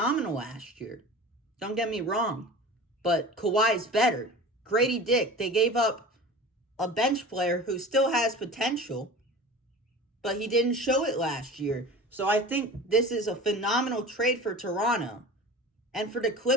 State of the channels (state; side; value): normal; both; correlation 0.37